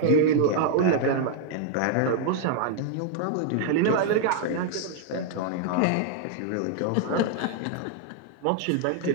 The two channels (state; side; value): different; both; correlation 0.00